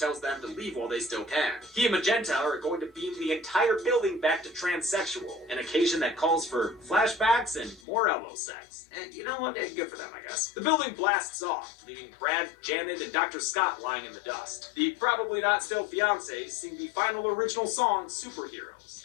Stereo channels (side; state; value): right; drops out; at 7.8 s